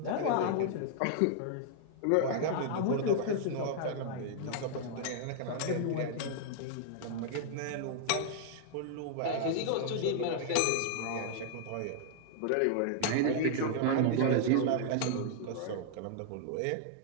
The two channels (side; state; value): both; different; correlation -0.01